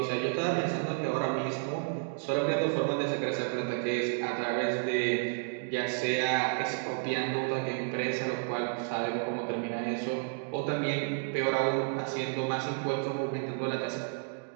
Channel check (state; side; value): silent; left; digital silence